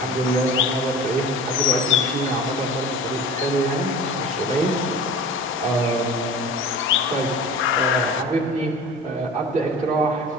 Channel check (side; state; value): both; normal; correlation 0.38